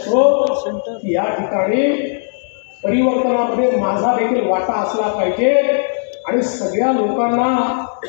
की या ठिकाणी परिवर्तनामध्ये माझा देखील वाटा असला पाहिजे आणि सगळ्या लोकांना,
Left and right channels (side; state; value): right; silent; digital silence